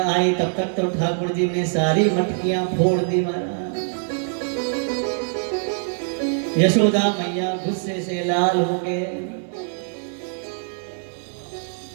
आई तब तक तो ठाकुर जी ने सारी मटकियां फोड़ दी महाराज। यशोदा मैया गुस्से से लाल हो गए।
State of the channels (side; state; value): left; silent; digital silence